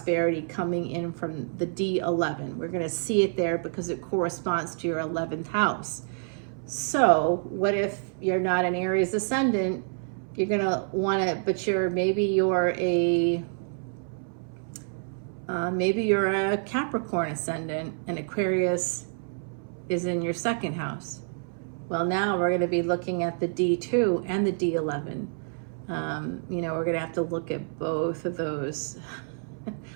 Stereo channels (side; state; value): left; silent; 59 dB below the other